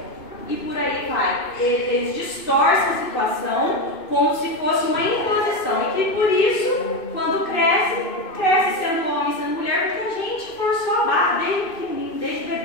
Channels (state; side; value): late; right; 2.6 ms